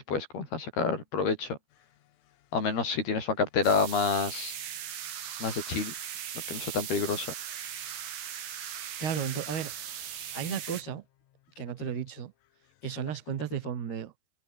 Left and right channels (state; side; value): late; right; 13 ms